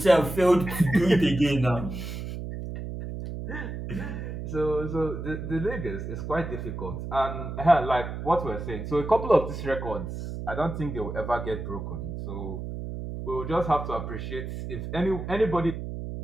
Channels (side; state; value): right; noise; hum, 7 dB below the sound